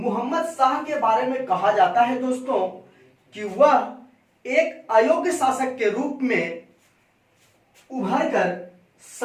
शाह के बारे में कहा जाता है दोस्तों कि वह एक अयोग्य शासक के रूप में उभर कर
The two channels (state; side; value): identical; both; correlation 1.00